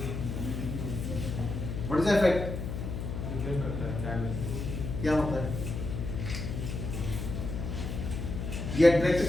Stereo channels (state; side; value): noise; left; hum, 4 dB below the sound